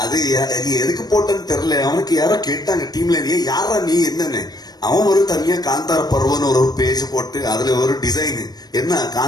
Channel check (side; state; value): right; late; 0.19 ms